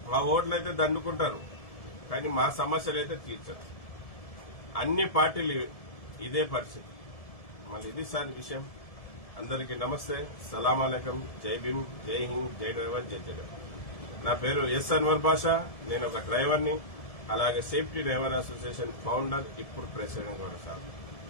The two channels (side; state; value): right; late; 1.7 ms